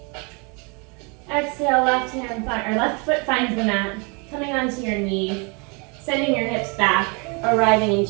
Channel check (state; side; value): quieter; left; 31.9 dB